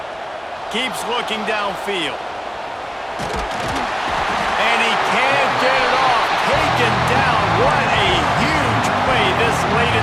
Keeps looking downfield. And he can't get it off. Taken down. What a huge play this late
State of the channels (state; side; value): identical; both; correlation 1.00